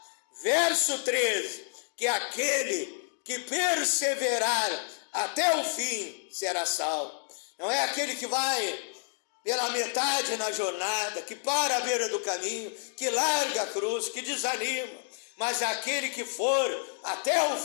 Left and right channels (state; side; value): silent; right; digital silence